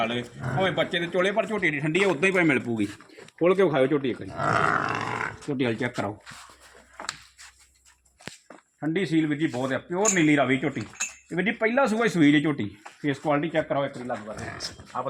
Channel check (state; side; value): identical; both; correlation 1.00